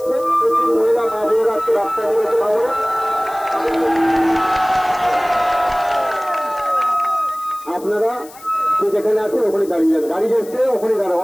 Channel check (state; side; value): noise; left; hiss, 21 dB below the sound